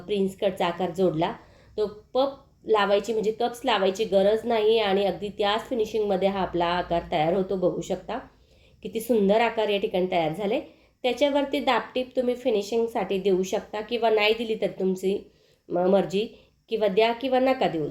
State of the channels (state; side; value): identical; both; correlation 1.00